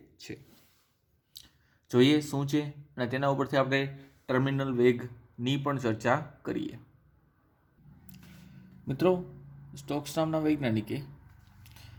છે. જોઈએ શું છે અને તેના ઉપરથી આપણે ટર્મિનલ વેગની પણ ચર્ચા કરીએ. મિત્રો, સ્ટોક્સ નામના વૈજ્ઞાનિકે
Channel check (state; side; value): identical; both; correlation 1.00